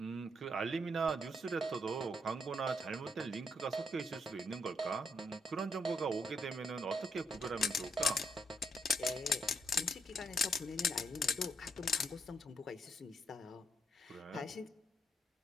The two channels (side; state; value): both; normal; correlation 0.76